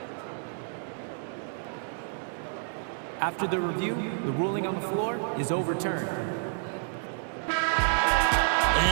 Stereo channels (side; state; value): left; silent; digital silence